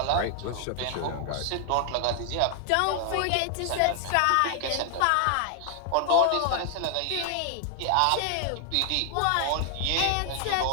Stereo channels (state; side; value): different; both; correlation 0.00